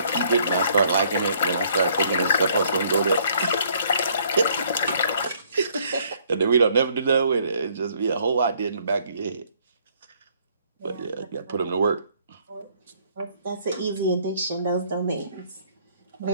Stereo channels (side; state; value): both; inverted; correlation -0.63